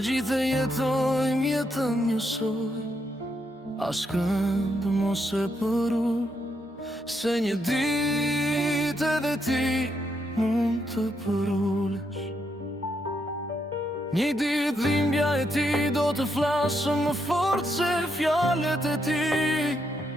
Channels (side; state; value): both; normal; correlation 0.79